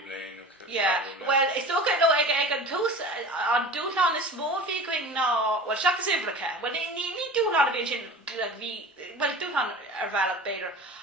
blian. Well, it's okay though. I can toast on dúchlan is smó fi going ná well seachas ifreacha. Well, ní dúchlan a bhíonn sin well dúchlan ar bhealach beidir.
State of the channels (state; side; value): normal; both; correlation 0.37